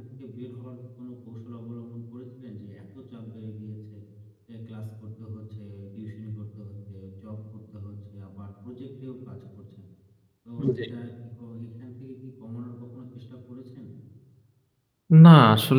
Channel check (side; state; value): both; identical; correlation 1.00